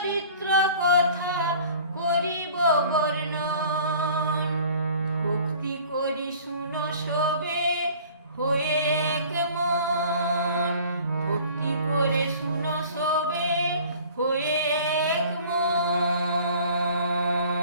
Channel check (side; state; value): both; inverted; correlation -0.48